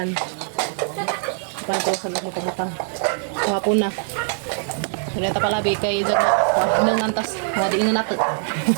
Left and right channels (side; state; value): left; silent; 56 dB below the other